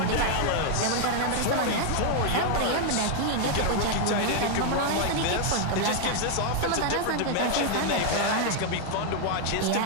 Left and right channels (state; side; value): different; both; correlation 0.00